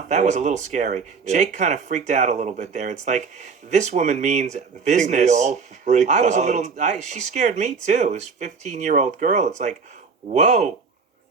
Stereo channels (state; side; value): quieter; left; 5.2 dB